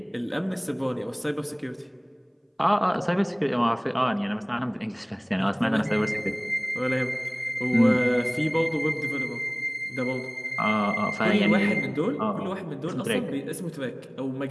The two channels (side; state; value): both; identical; correlation 1.00